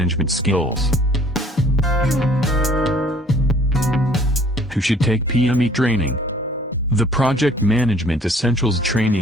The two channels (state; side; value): normal; both; correlation 0.55